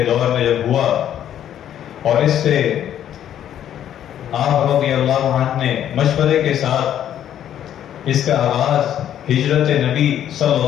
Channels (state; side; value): quieter; right; 10.6 dB